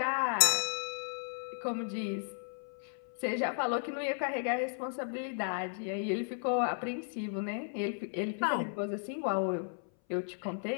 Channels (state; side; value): silent; right; 55 dB below the other